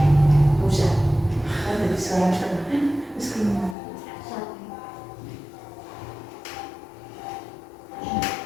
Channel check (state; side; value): drops out; right; at 3.8 s